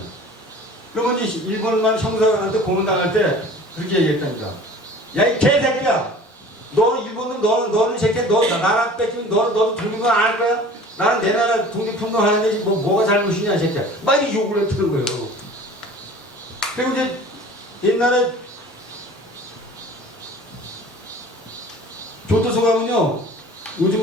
그러면 이제 일본만 형사한테 고문당할 때 그렇게 얘기했다니까. 야, 이 개새끼야! 너는 일본은 너는 새끼야. 너 나라 뺏기면 너도 독립은 안 할 거야? 나는 내 나라 독립운동 하는데 뭐가 잘못이냐, 이 새끼야. 막 이렇게 욕을 했다는 거예요. 그리고 이제 옛날에 교도소 가면요.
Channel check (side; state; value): both; normal; correlation 0.44